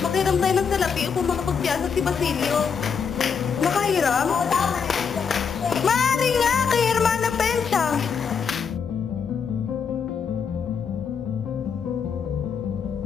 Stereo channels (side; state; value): right; quieter; 6.4 dB